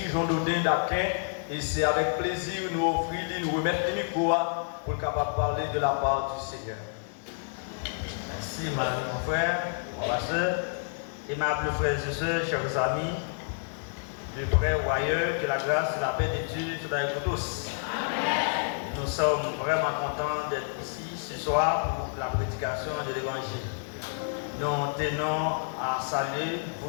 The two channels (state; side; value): silent; right; digital silence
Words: Jean-Dodin d'Aquin, et c'est avec plaisir nous offrir, nous remettre le micro pour capable parler de la part du Seigneur. Merci, madame, mon frère, ma soeur, aimables frères et sœurs, chers amis, de près ou ailleurs, que la grâce et la paix de Dieu soient avec vous tous. Amen. Nous sommes vraiment contents d'être ici ce soir pour la prédication de l'Évangile. Nous tenons à saluer